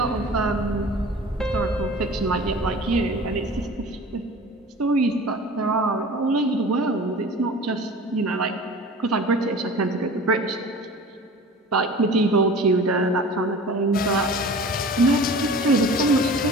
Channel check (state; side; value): normal; both; correlation 0.40